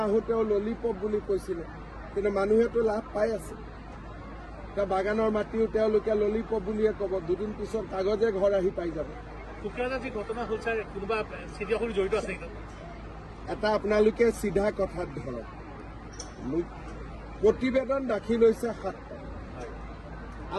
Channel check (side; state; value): both; identical; correlation 1.00